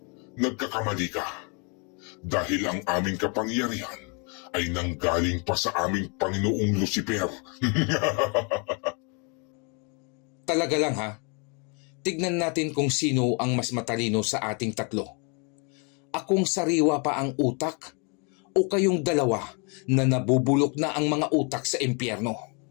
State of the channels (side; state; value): right; quieter; 35.2 dB